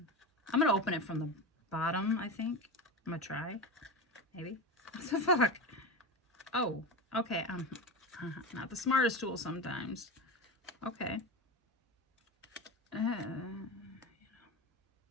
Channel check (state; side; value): normal; both; correlation 0.23